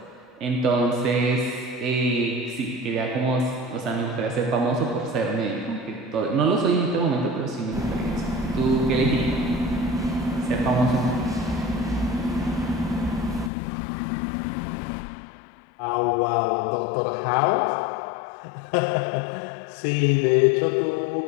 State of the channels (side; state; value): right; drops out; at 13.5 s